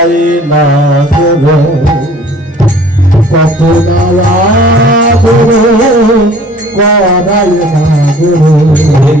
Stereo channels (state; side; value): normal; both; correlation 0.51